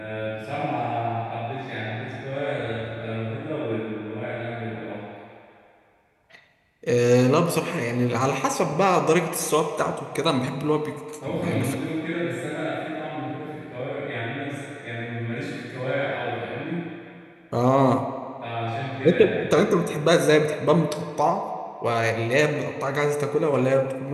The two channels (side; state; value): both; identical; correlation 1.00